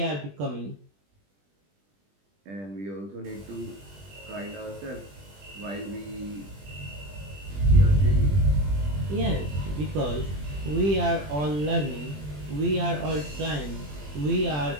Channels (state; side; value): late; left; 20 ms